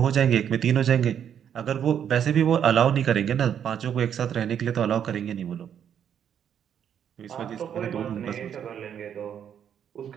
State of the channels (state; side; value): quieter; left; 8.8 dB